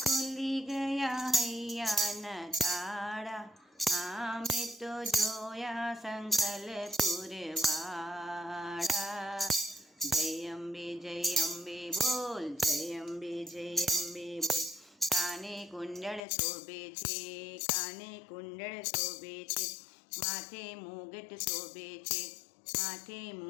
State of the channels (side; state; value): right; drops out; at 16.2 s